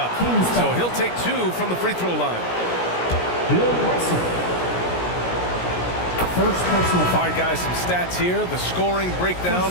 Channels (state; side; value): late; right; 17 ms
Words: So he'll take 2 from the free throw line. Bill Russell. First personal foul. All right, guys, some stats here. The scoring breakdown